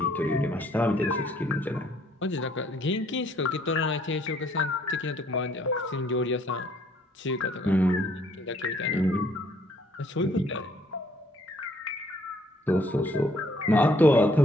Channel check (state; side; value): normal; both; correlation 0.64